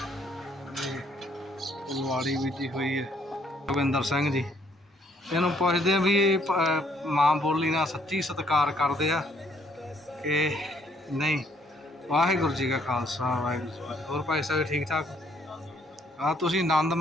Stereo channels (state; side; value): normal; both; correlation 0.66